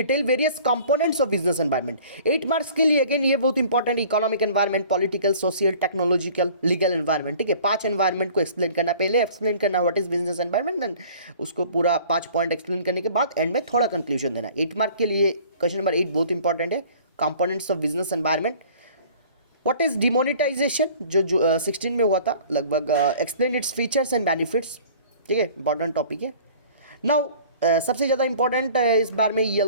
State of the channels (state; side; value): inverted; both; correlation -0.49